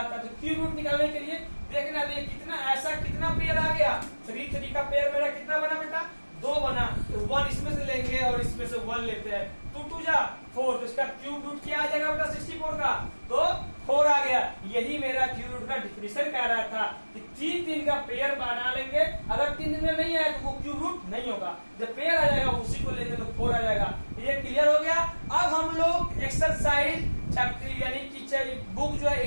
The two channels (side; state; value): both; inverted; correlation -1.00